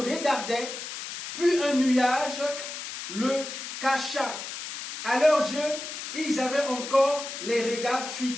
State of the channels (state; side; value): noise; left; hiss, 8 dB below the sound